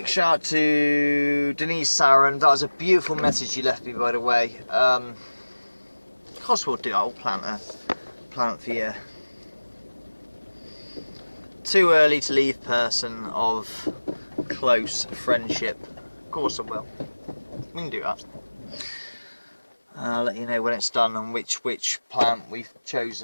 shout to Denise Saran. That was a beautiful message you left me, by the way. Of course we'll do, I'll plant for you. Too early to leave person of close friendship. Of course I will. We can do that. I'll let you know when it's done and which plant we've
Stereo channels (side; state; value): both; inverted; correlation -1.00